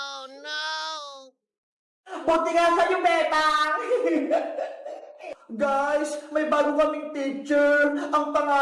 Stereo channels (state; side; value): identical; both; correlation 1.00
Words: no! Buti nga sa'yo, Bebang! Guys, may bago kaming teacher. Ang